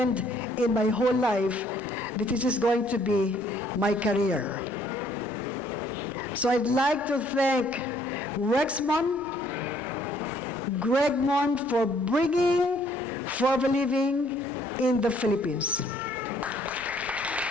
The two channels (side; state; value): both; normal; correlation 0.63